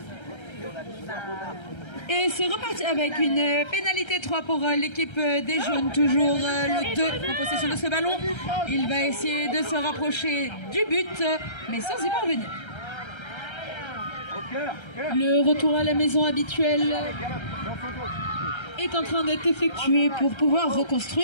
Et c'est reparti avec une pénalité 3 pour l'équipe des jaunes. Toujours le 2 en possession de ce ballon. Il va essayer de se rapprocher du but, mais sans y parvenir. Le retour à la maison habituel est en train d'être effectué pour pouvoir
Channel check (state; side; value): late; right; 1.3 ms